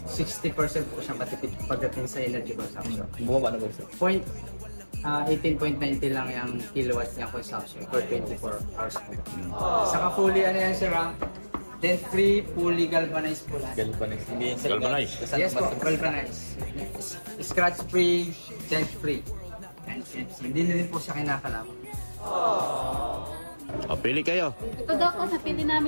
po siya matipid pagdating sa energy consumption. Bumaba na po siya. 18.90 lang yung kilowatt niya consumption per 24 hours po. Saka fully ano yan sir, then free, fully galvanized po lahat. Galvanized. Hindi yan sa Galvanized? Yes po, galvanized. Scratch free, dent free. Hindi na rin po siya kinakalaman. O, pili kayo. Ito daw ko, napili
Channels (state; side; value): inverted; both; correlation -1.00